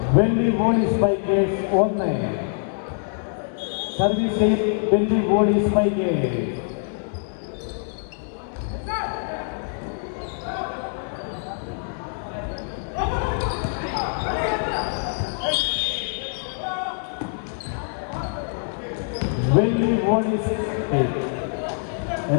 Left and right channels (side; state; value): right; silent; 62 dB below the other